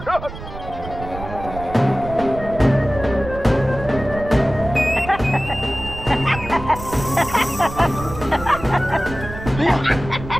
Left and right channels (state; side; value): noise; right; rumble, 11 dB below the sound